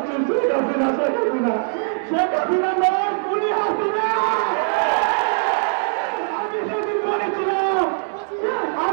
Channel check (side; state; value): left; silent; 65 dB below the other